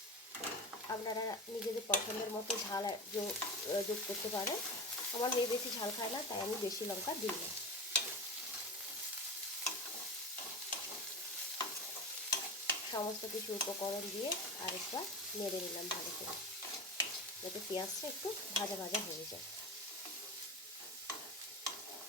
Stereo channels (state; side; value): normal; both; correlation 0.27